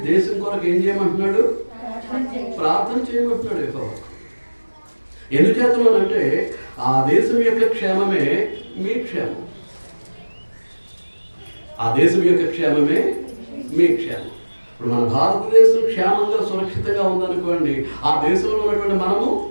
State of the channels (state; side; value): inverted; both; correlation -1.00